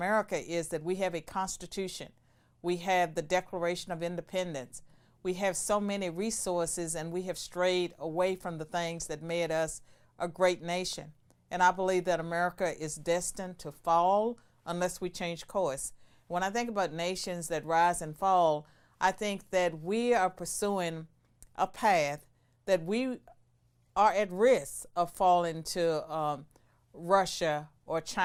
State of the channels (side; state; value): both; identical; correlation 1.00